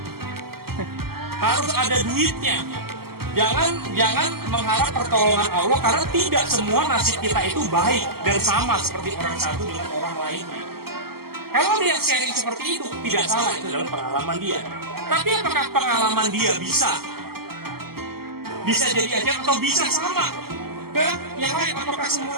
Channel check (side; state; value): left; late; 0.95 ms